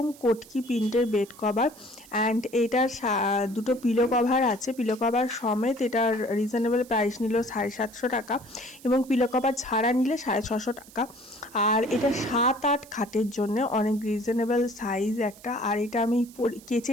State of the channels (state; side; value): noise; right; hiss, 22 dB below the sound